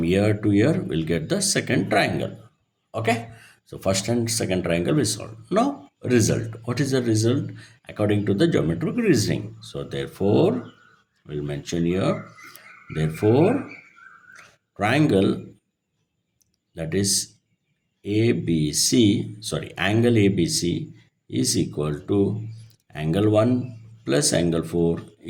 here to here we'll get the second triangle. Okay, so first and second triangle we solve. Now result, what is the result according to the geometric reasoning? So therefore we'll mention here, therefore triangle, that is ABC, sorry, angle ABC is equal to angle 1 plus angle 4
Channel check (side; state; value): both; identical; correlation 1.00